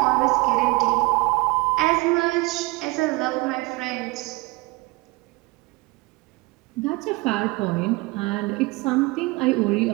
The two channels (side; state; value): left; quieter; 23.1 dB